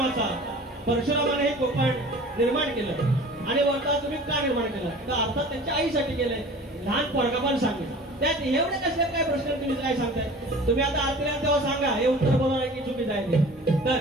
परशुरामाने हे कोकण निर्माण केलं आणि वरता तुम्ही का निर्माण केलं तर अर्थात त्यांच्या आईसाठी केलंय. लहान पोरगा पण सांगेल त्यात एवढे कसले काय प्रश्न तुम्ही काय सांगताय. तुम्ही आता आरतीला तेव्हा सांगा हे उत्तर बरोबर की चुकीचं आहे ते.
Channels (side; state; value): both; normal; correlation 0.42